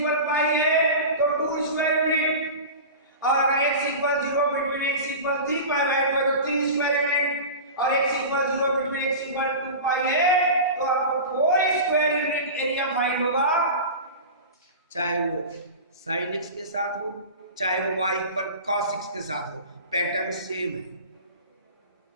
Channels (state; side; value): inverted; both; correlation -0.31